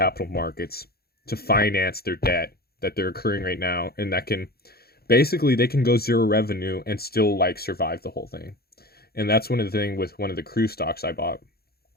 markets to finance their debt that they're accruing right now, and that can basically, they can go zero revenue and still survive the whole thing. And that's one of the things with one of the cruise stocks I bought.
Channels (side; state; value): right; late; 0.45 ms